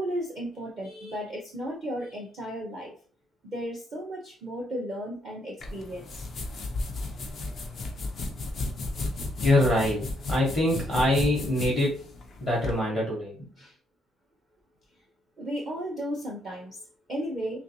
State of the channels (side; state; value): both; normal; correlation 0.74